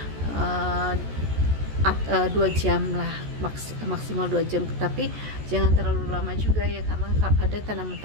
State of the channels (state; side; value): late; left; 14 ms